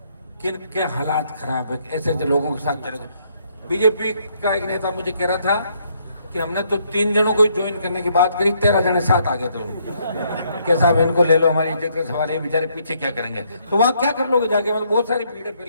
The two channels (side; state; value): both; inverted; correlation -0.71